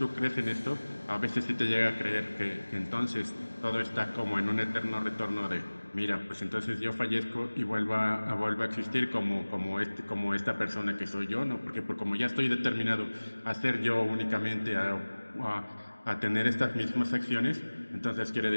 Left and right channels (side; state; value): both; inverted; correlation -1.00